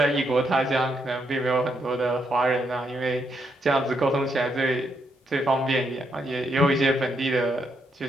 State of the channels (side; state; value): both; normal; correlation 0.78